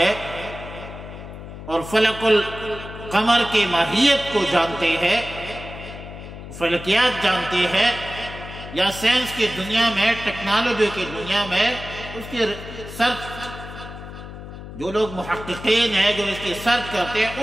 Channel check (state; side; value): noise; left; hum, 12 dB below the sound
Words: اور فلک القمر کی ماہیت کو جانتے ہیں، فلکیات جانتے ہیں، یا سائنس کی دنیا میں، ٹیکنالوجی کی دنیا میں اس کی سرچ، جو لوگ محققین ہیں جو اس کی سرچ کرتے ہیں